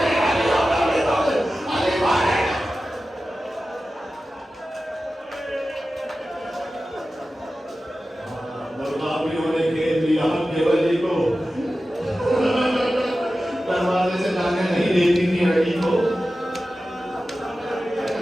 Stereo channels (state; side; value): normal; both; correlation 0.94